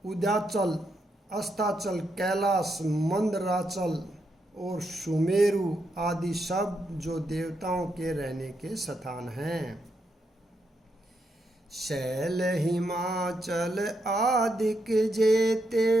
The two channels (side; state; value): both; normal; correlation 0.81